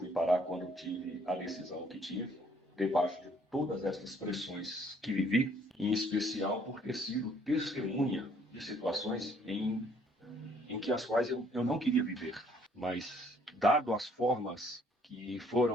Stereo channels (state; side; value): normal; both; correlation 0.62